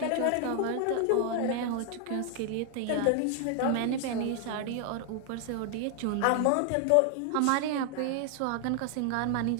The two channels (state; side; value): different; both; correlation 0.00